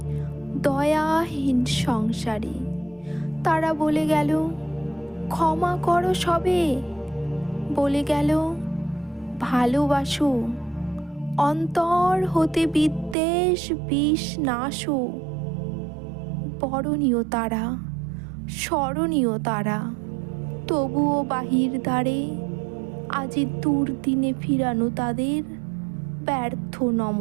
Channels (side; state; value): left; drops out; at 13.2 s